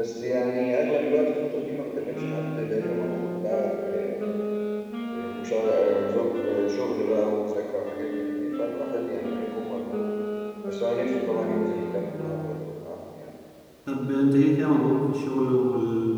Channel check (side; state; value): both; identical; correlation 1.00